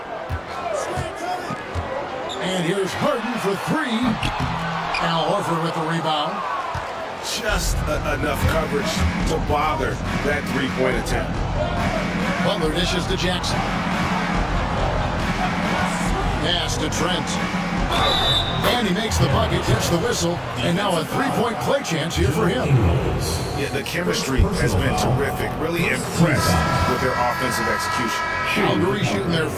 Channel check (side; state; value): both; identical; correlation 1.00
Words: And here's Harden for three. Al Horford with the rebound. Just enough coverage to bother that three-point attempt. Butler dishes to Jackson. Pass to Trent. And he makes the bucket, gets the whistle, and now a three-point play chance here for him. Yeah, the chemistry has been terrific. Really impressed with their offensive execution. Calgary shooting their